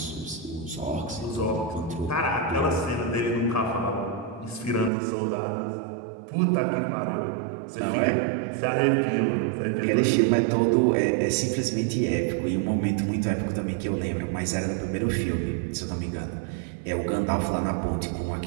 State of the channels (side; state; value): left; drops out; at 4.9 s